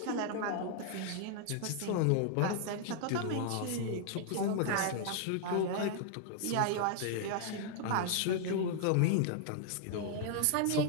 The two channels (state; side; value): different; both; correlation 0.00